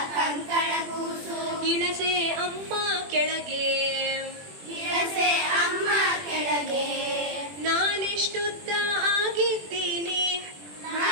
ಕಂಕಣ ಕೂಸು, ಇಳಸೆ ಅಮ್ಮ ಕೆಳಗೆ, ಇಳಸೆ ಅಮ್ಮ ಕೆಳಗೆ. ನಾನೆಷ್ಟುದ್ದ ಆಗಿದ್ದೀನಿ,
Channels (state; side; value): late; left; 21 ms